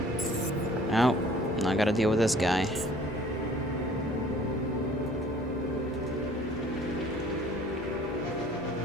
Oh, I gotta deal with this guy.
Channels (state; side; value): normal; both; correlation 0.53